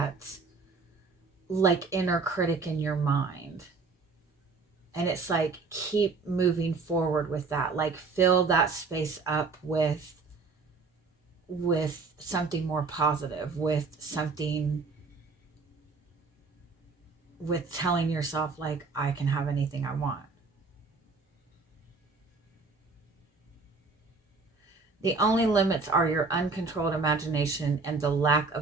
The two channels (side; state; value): left; quieter; 4.2 dB